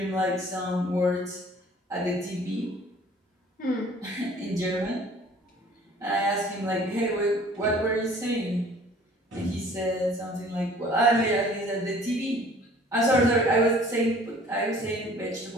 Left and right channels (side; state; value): both; normal; correlation 0.52